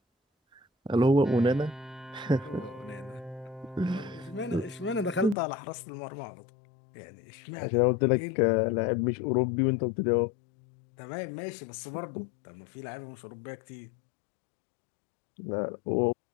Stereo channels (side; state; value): right; drops out; at 5.4 s